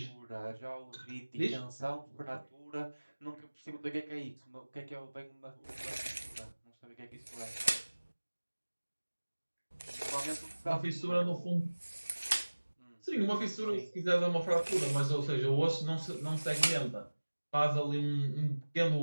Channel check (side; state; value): both; inverted; correlation -1.00